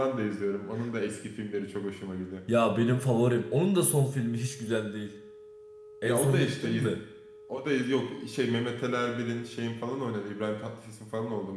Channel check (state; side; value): identical; both; correlation 1.00